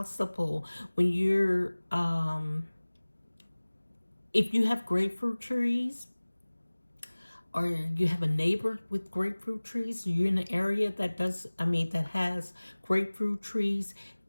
when you're if you have grapefruit trees, or you have a neighbor with grapefruit trees, you're in an area that that has grapefruit trees,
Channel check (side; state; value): both; inverted; correlation -1.00